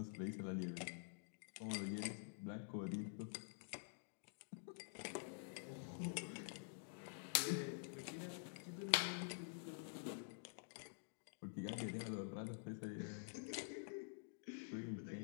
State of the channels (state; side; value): silent; right; digital silence